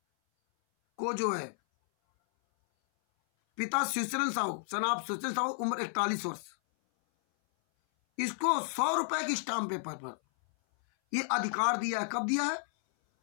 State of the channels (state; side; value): silent; right; 56 dB below the other